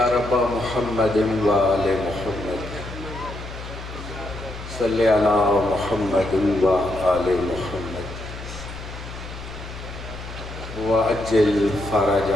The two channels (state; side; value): noise; left; hum, 11 dB below the sound